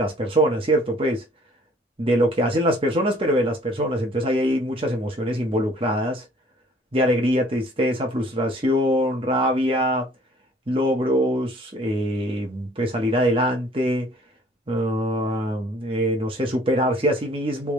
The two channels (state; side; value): normal; both; correlation 0.56